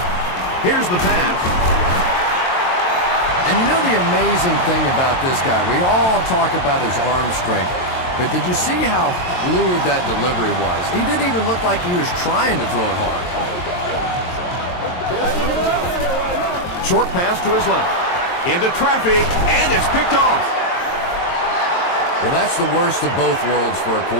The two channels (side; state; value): right; late; 23 ms